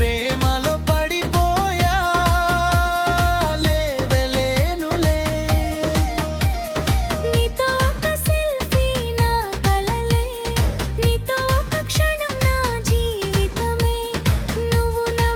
పడిపోయా లేవలేనులే. నీతో ఒక సెల్ఫీ నా కలలే, నీతో ఒక క్షణం నా జీవితమే. నువ్వు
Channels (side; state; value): both; identical; correlation 1.00